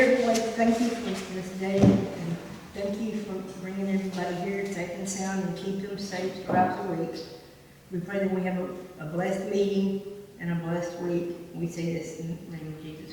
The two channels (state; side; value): identical; both; correlation 1.00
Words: Lord, thank you for this day, and thank you for bringing everybody here safe and sound and keep them safe throughout the week. We pray that we have a blessed meeting and a blessed week. We say this in the name of